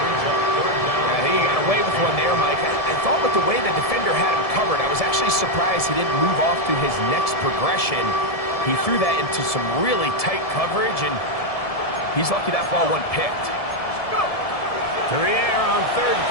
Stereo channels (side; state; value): right; late; 1.7 ms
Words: think he got away with one there, Mike. I thought with the way the defender had him covered, I was actually surprised he didn't move off to his next progression. He threw that into some really tight coverage, and he's lucky that ball wasn't picked. To the air on 3rd